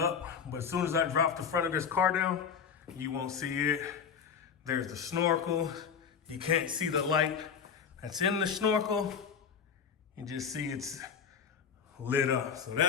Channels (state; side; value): quieter; right; 6.9 dB